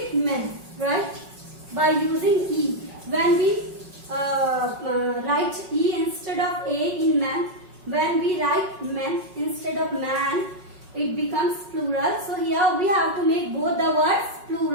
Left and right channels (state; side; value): late; left; 5.4 ms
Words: by using E. When we write E instead of A in man, when we write men instead of man, it becomes plural. So here we have to make both the words